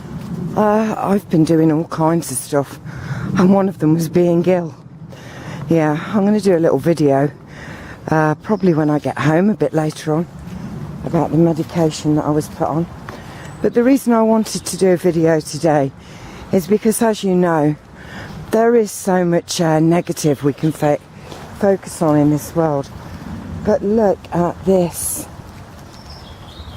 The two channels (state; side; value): identical; both; correlation 1.00